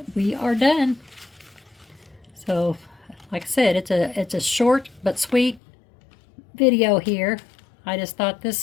we are done. So, like I said, it's a short but sweet video here. I just thought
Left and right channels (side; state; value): right; drops out; at 5.6 s